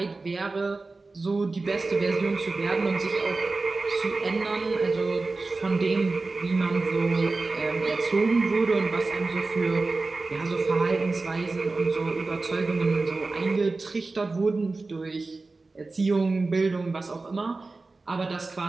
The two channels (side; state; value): left; quieter; 3.6 dB